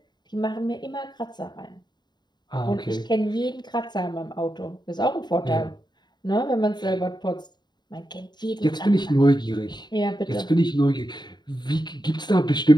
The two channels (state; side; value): late; right; 0.21 ms